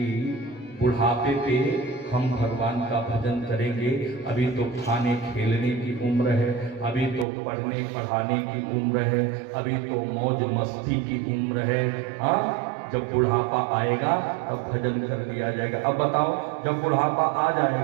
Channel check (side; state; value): left; drops out; at 7.2 s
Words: बुढ़ापे पे हम भगवान का भजन करेंगे। अभी तो खाने खेलने की उम्र है, अभी तो पढ़ने पढ़ाने की उम्र है, अभी तो मौज मस्ती की उम्र है। हाँ, जब बुढ़ापा आएगा तब भजन कर लिया जाएगा। अब बताओ, जब बुढ़ापा आ